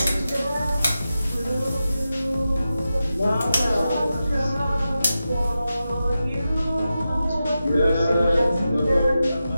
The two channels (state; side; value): inverted; both; correlation -0.91